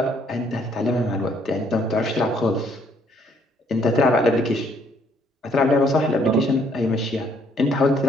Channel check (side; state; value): both; normal; correlation 0.66